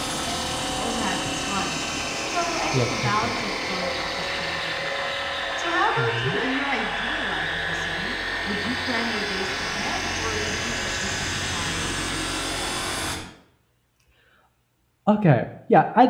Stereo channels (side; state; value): both; identical; correlation 1.00